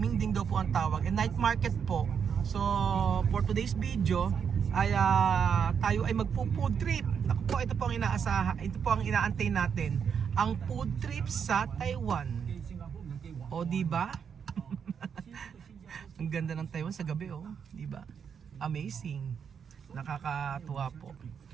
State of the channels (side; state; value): left; quieter; 7.1 dB